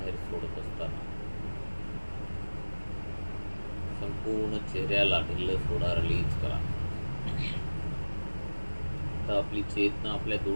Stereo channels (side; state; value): both; inverted; correlation -1.00